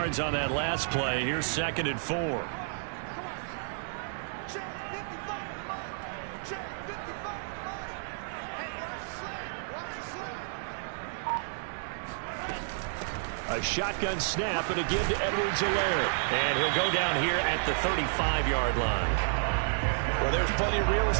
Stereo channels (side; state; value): left; silent; digital silence